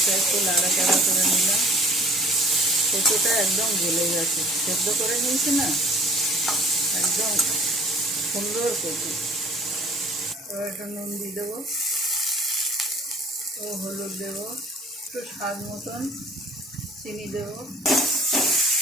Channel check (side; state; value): both; normal; correlation 0.50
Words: একটু নাড়াচাড়া করে নিলাম। কচুটা একদম গলে গেছে, সেদ্ধ করে নিয়েছি না, একদম সুন্দর কচু। এবার একটু নুন দিয়ে দেবো ও হলুদ দেবো, একটু স্বাদ মতন চিনি দেবো।